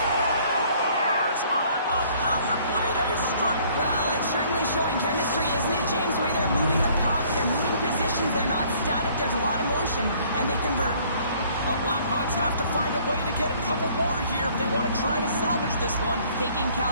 On the power play, they strike. Well, it's certainly showing chemistry, isn't it, James? The way they're moving the puck, they're moving positions, they're not static, there's a lot of motion, and they convert. The Blackhawks have to find a way to get a couple more here if they want to try to salvage this one. Taking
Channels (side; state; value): both; inverted; correlation -0.59